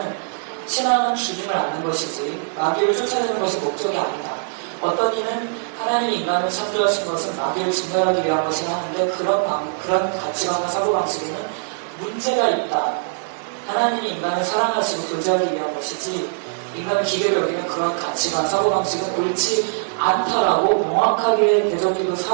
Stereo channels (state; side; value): silent; left; digital silence